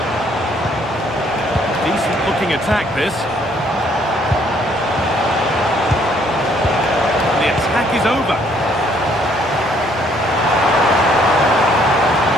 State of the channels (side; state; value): both; normal; correlation 0.65